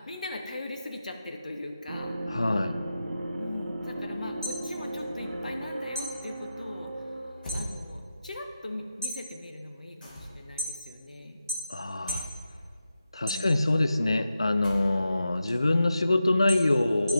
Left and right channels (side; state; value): both; inverted; correlation -0.90